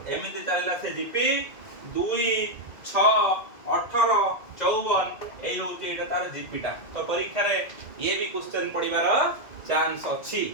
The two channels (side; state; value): right; late; 2.2 ms